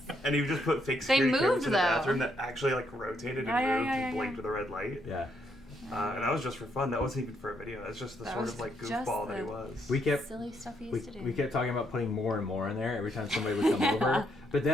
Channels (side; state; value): both; normal; correlation 0.75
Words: and you just put fake security moved, cameras in the though. bathroom that actually like rotated and moved and blinked with a red light. Yeah. And that was just for fun. That wasn't even for a video. That's just the That sort was of like just goofball that the- he was. We kept Silly stuff he used to do. we kept talking about putting more and more in there every time somebody would come over. But